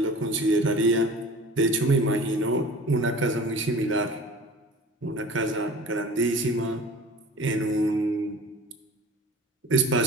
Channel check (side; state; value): both; normal; correlation 0.41